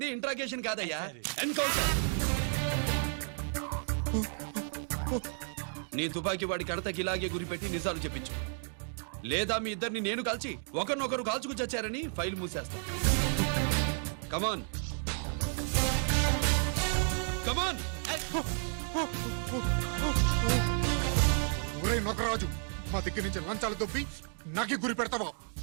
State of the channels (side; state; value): left; silent; 56 dB below the other